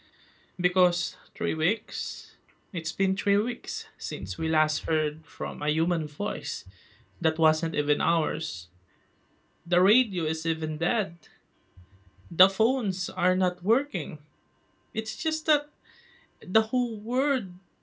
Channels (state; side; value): identical; both; correlation 1.00